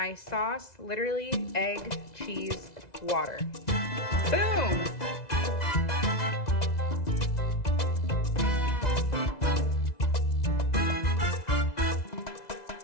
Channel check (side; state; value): right; late; 2.0 ms